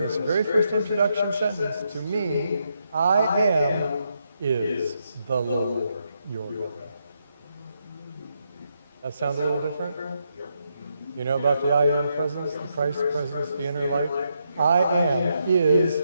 very first introduction sentence to mean, I am is the Lord your God. That sound a little different? You know about the I am presence, the Christ presence, the inner light? I am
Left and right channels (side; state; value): both; inverted; correlation -0.80